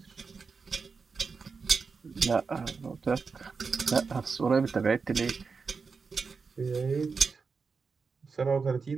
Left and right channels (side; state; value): left; quieter; 5.0 dB